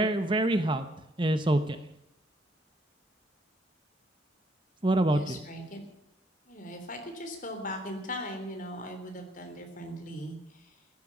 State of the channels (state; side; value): normal; both; correlation 0.69